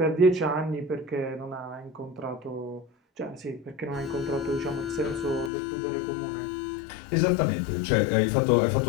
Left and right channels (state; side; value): drops out; right; at 5.5 s